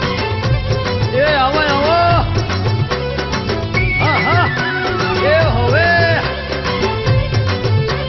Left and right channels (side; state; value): both; identical; correlation 1.00